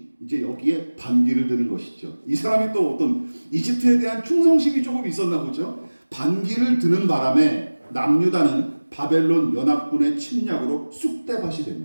이제 여기에 반기를 드는 것이죠. 이 사람이 또 어떤 이집트에 대한 충성심이 조금 있었나 보죠. 반기를 드는 바람에 남유다는 바벨론 연합군의 침략으로 쑥대밭이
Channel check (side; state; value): both; inverted; correlation -1.00